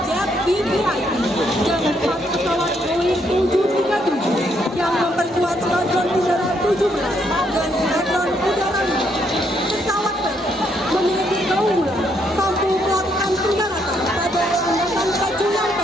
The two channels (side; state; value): both; normal; correlation 0.73